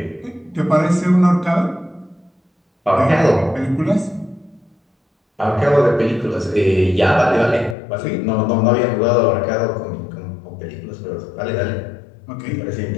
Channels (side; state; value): right; drops out; at 7.8 s